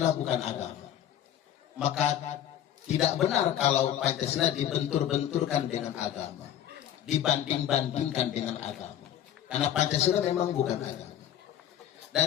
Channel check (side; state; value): right; quieter; 10.8 dB